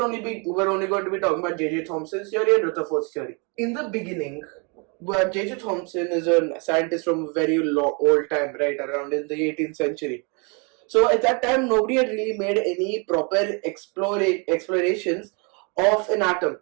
only going to be talking about J.J. Thompson's theory and Rutherford's theory. In the beginning, J.J. Thompson is a scientist from a very old time, right around in the 18th century. So at that time, nobody had really made any proper explorations of an atom.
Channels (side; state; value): left; quieter; 33.7 dB